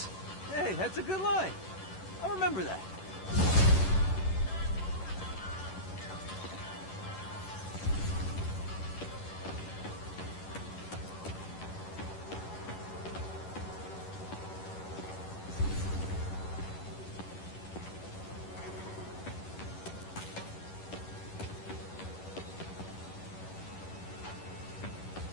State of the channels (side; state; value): right; late; 11 ms